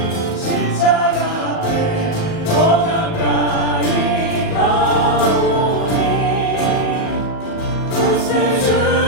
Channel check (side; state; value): right; late; 37 ms